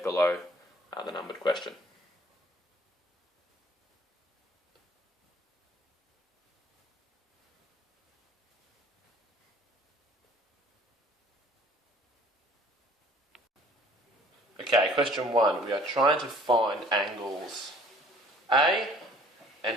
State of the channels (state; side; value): normal; both; correlation 0.54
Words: below the numbered question. Okay, question 1. We are trying to find angles A and